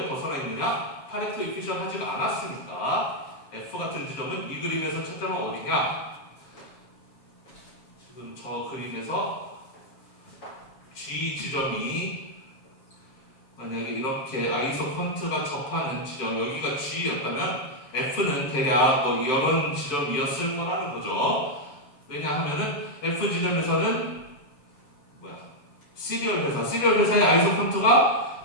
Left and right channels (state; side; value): late; right; 7.7 ms